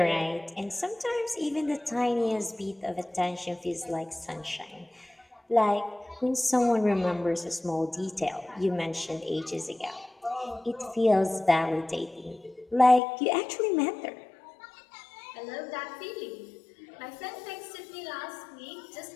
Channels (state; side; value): drops out; right; at 13.0 s